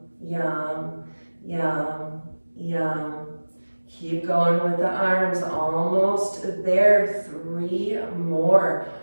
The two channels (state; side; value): inverted; both; correlation -1.00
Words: Yam, Yam, Yam. Keep going with the arms, almost there. 3 more.